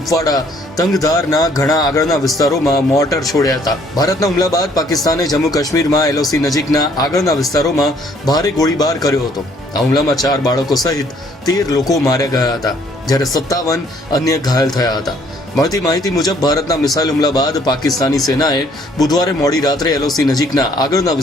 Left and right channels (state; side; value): normal; both; correlation 0.63